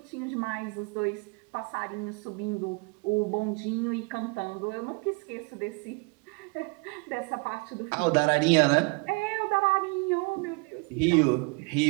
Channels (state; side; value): quieter; left; 30.4 dB